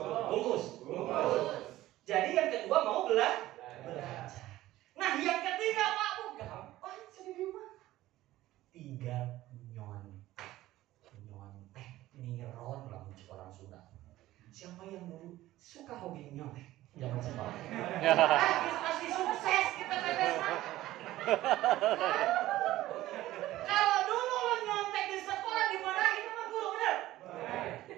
Bungkus. Jadi yang kedua mau belajar. Nah yang ketiga Pak, gampang jadi di rumah. Tinggal nyontek, niron lah orang Sunda. Siapa yang dulu suka hobi nyontek? Jangan sekolah. Pasti sukses kita pepes. Kalau dulu lo nyontek di sekolah dimarahin sama guru, bener?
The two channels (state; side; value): quieter; left; 15.7 dB